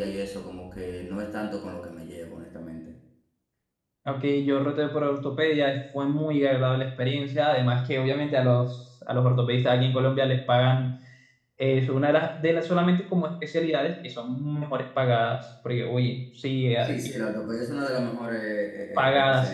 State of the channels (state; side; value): identical; both; correlation 1.00